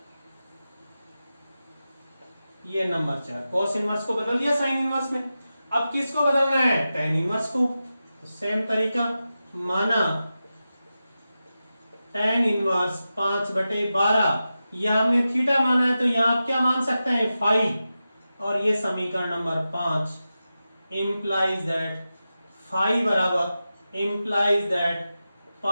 ये नंबर 4। cos इनवर्स को बदल दिया साइन इनवर्स में, अब किसको बदलना है? tan इनवर्स को। तो सेम तरीका, माना tan इनवर्स 5/12, यह हमने थीटा माना है तो यहां आप क्या मान सकते हैं, फाई। और ये समीकरण नंबर 5 implies that फाई बराबर implies that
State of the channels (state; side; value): inverted; both; correlation -0.92